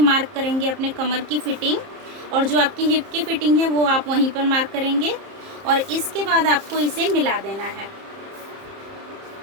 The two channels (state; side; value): late; left; 30 ms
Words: करेंगे अपने कमर की फिटिंग, और जो आपकी हिप की फिटिंग है वो आप वहीं पर मार्क करेंगे। और इसके बाद आपको इसे मिला देना है,